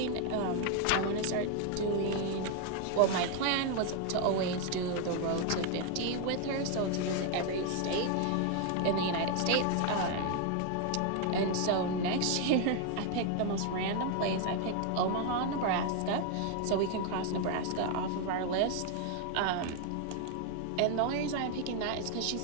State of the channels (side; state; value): both; different; correlation 0.01